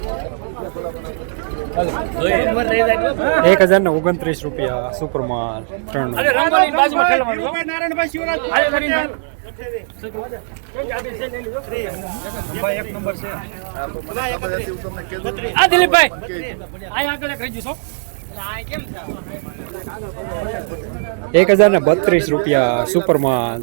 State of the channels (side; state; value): left; silent; 65 dB below the other